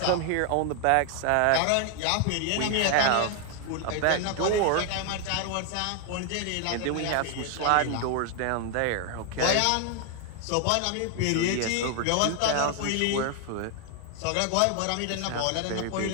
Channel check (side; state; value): both; different; correlation 0.00